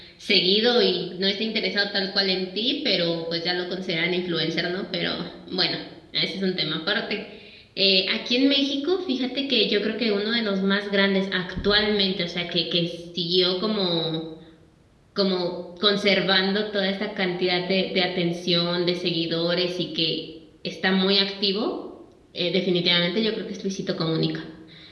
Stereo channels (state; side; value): identical; both; correlation 1.00